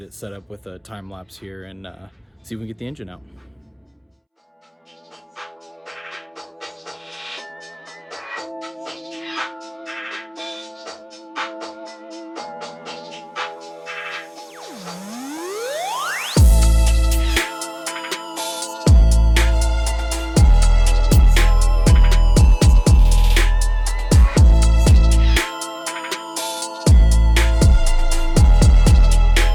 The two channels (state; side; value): identical; both; correlation 1.00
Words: it set up with a time lapse here and see if we can get the engine out.